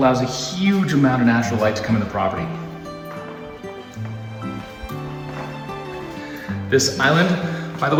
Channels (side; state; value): both; identical; correlation 1.00